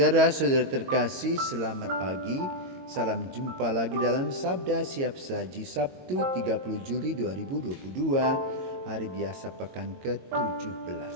terkasih, selamat pagi. Salam jumpa lagi dalam Sabda Siap Saji Sabtu 30 Juli 2022, hari biasa pekan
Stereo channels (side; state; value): left; late; 22 ms